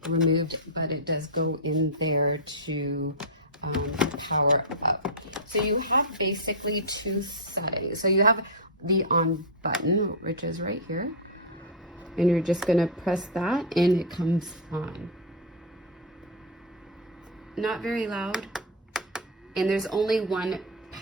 removed, but it does go in there to power up. So you have basically two settings. So you have the on button, which is right here, and you're just gonna press that and it comes on. Not very loud, and there's only one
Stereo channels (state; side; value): normal; both; correlation -0.02